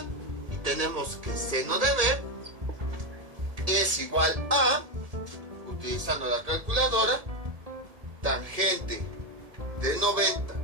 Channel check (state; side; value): late; left; 1.7 ms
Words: Y tenemos que seno de B es igual a, utilizando la calculadora, tangente de 90